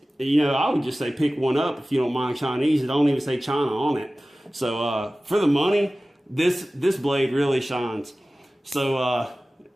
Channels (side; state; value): both; normal; correlation 0.97